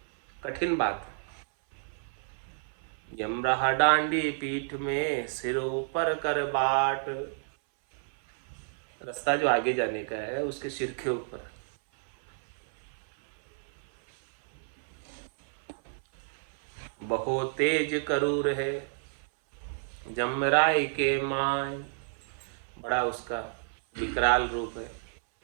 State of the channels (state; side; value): silent; left; 58 dB below the other